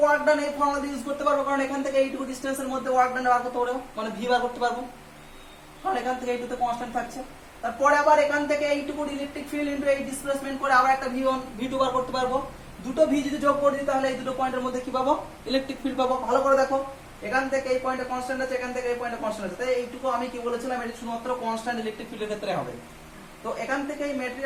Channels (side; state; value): both; identical; correlation 1.00